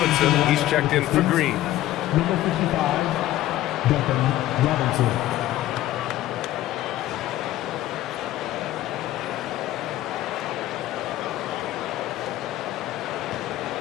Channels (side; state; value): right; quieter; 14.6 dB